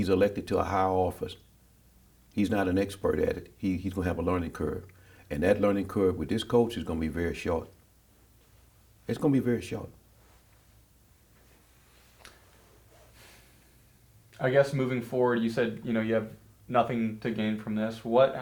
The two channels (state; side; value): identical; both; correlation 1.00